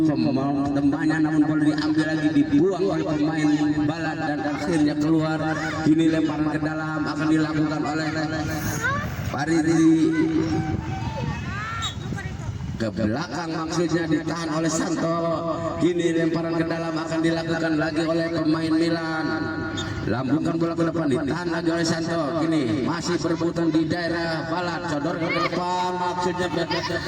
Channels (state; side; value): identical; both; correlation 1.00